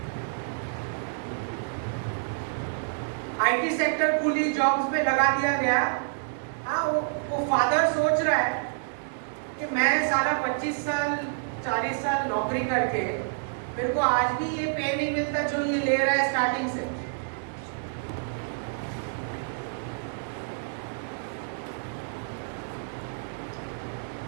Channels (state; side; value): silent; left; digital silence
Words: आईटी सेक्टर खुली जॉब्स में लगा दिया गया. हाँ, वो फादर सोच रहा है कि मैं साला 25 साल 40 साल नौकरी करके मेरे को आज भी ये पे नहीं मिलता जो ये ले रहा है स्टार्टिंग से.